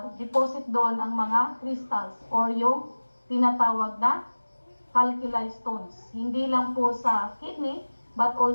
deposit doon ang mga crystals or yung tinatawag na calculi stones. Hindi lang po sa kidney, but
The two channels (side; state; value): both; inverted; correlation -1.00